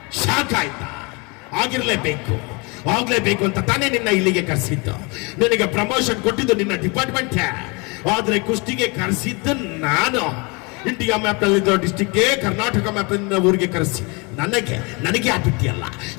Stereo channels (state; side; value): quieter; right; 29.5 dB